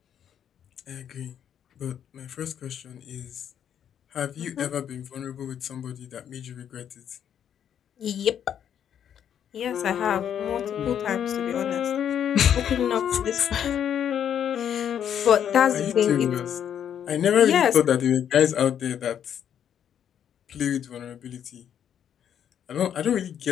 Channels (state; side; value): quieter; right; 9.1 dB